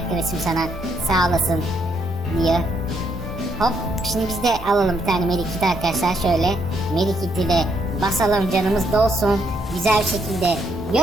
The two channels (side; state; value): both; normal; correlation 0.74